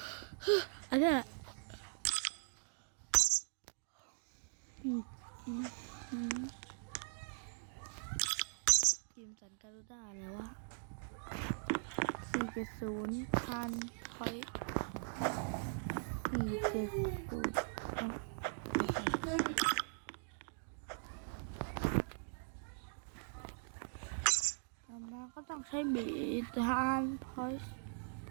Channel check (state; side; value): silent; left; digital silence